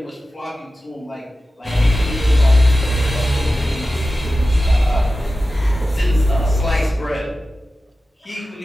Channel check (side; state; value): both; normal; correlation 0.94